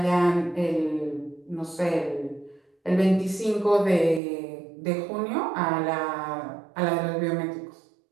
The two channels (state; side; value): drops out; left; at 4.2 s